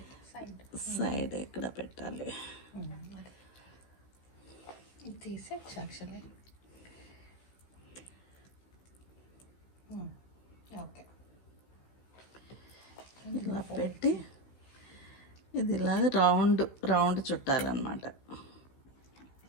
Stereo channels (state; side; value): late; right; 15 ms